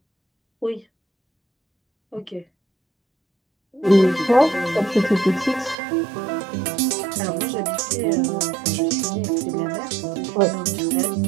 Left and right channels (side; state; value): left; drops out; at 5.8 s